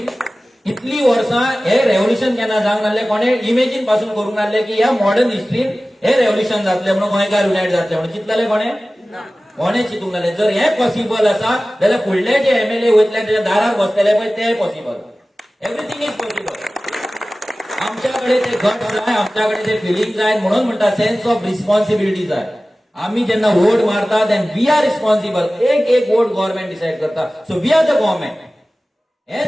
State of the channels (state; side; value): normal; both; correlation 0.97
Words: इतली वर्सां हे रेव्होल्युशन केन्ना जावंक नासलें, कोणे इमेजीन पासून करूंक नासलें की ह्या मॉडर्न हिस्ट्रीन हे रेव्होल्युशन जातलें म्हणून, गोंयकार युनायट जातले म्हणून. चिंतलें कोणे चिंतूंक नासलें. जर हें पॉसिबल आसा जाल्यार फुडले जे MLA वयतले त्याच्या दारार बसतले पळय ते पॉसिबल. Everything is possible. आमच्याकडे ते गट जाय, आमच्याकडे ते फिलिंग जाय. म्हणून म्हणटा सेन्स ऑफ रिस्पॉन्सिबिलिटी जाय. आम्ही जेन्ना वोट मारता देन वी आर रिस्पॉन्सिबल. एक वोट गव्हर्नमेंट डिसाइड करता. So we are the government. हे